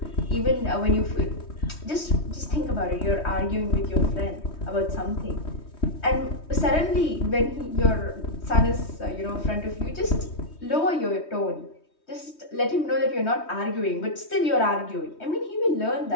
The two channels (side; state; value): right; late; 3.2 ms